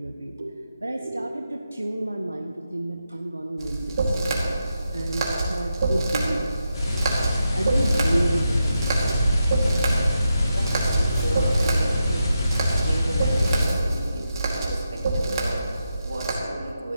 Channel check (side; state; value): both; inverted; correlation -0.86